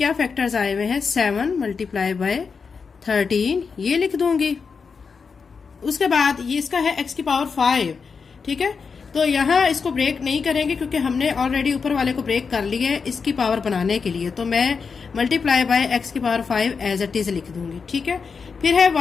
फैक्टर्स आए हुए हैं, 7 मल्टीप्लाई बाय 13, ये लिख दूंगी। उसके बाद ये इसका है x की पावर 5। ठीक है, तो यहाँ इसको ब्रेक नहीं करेंगे क्योंकि हमने ऑलरेडी ऊपर वाले को ब्रेक कर लिया है इसकी पावर बनाने के लिए, तो मैं मल्टीप्लाई बाय x की पावर 5 एज इट इज लिख दूंगी। ठीक है, फिर है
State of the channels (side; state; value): right; quieter; 5.4 dB